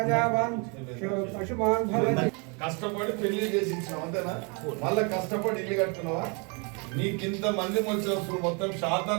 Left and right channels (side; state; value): left; quieter; 33.5 dB